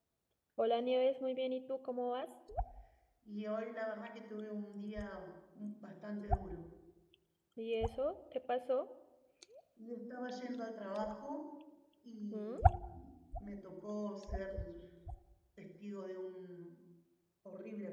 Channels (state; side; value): identical; both; correlation 1.00